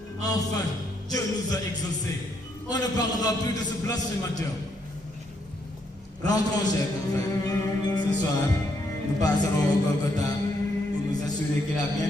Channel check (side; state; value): both; normal; correlation 0.75